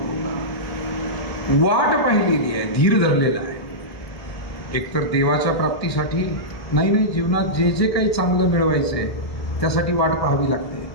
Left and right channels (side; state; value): right; late; 1.4 ms